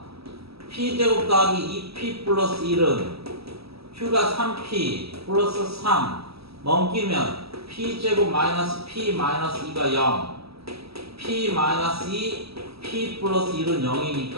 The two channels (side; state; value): left; late; 0.77 ms